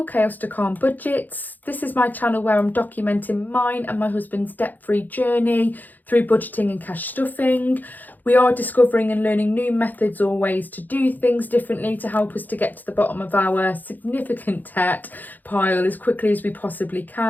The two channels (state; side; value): late; right; 0.085 ms